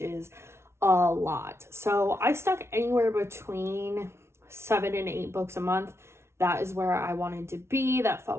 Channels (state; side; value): late; left; 0.13 ms